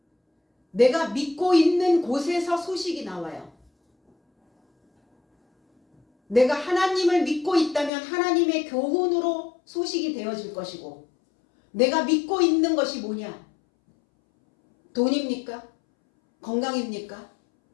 내가 믿고 있는 곳에서 소식이 나와요. 내가 하나님을 믿고 있다면 하나님의 교훈으로 소식이 되어질 것이고, 내가 믿고 있는 것이 뭐냐? 돈입니까? 건강입니까?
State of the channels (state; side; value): drops out; right; at 7.9 s